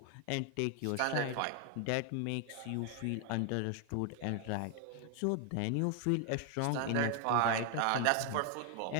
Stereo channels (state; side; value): different; both; correlation 0.00